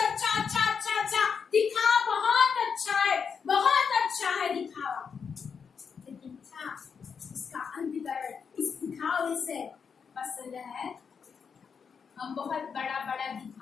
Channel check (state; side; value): quieter; right; 6.3 dB